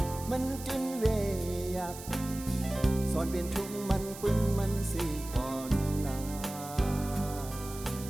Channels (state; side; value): noise; right; hiss, 13 dB below the sound